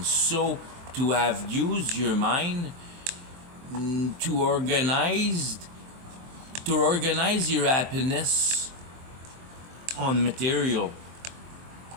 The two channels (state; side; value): late; left; 23 ms